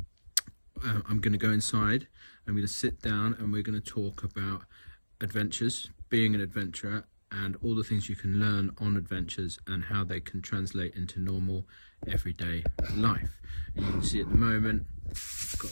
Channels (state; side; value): inverted; both; correlation -1.00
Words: I'm going to go inside, I'm going to sit down, and we're going to talk about adventures, being an adventurer, and all the things you can learn on adventures and how they can translate into normal everyday life. And you can see at the moment I've